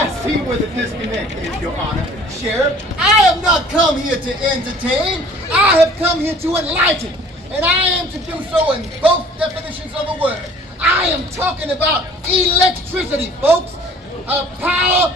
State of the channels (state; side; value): normal; both; correlation 0.51